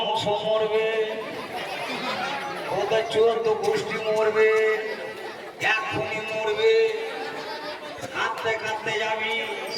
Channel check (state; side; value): identical; both; correlation 1.00